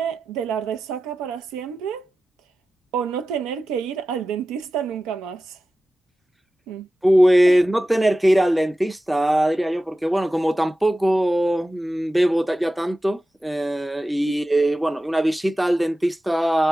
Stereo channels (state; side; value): normal; both; correlation 0.94